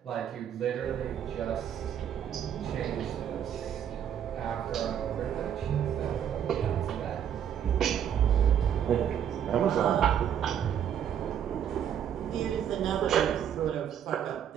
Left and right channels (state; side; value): quieter; left; 9.2 dB